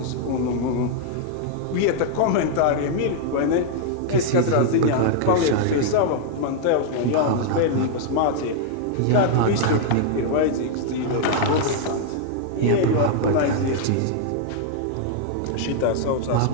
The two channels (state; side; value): different; both; correlation 0.00